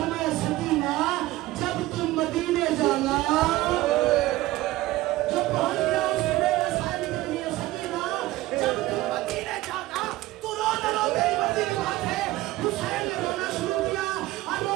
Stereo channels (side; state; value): left; quieter; 17.3 dB